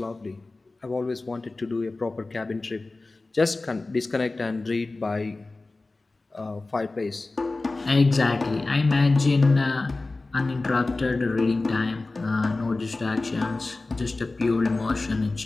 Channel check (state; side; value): quieter; right; 3.3 dB